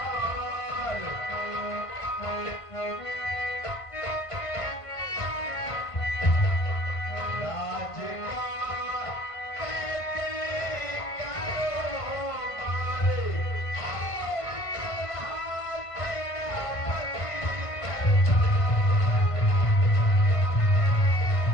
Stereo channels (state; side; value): late; right; 1.5 ms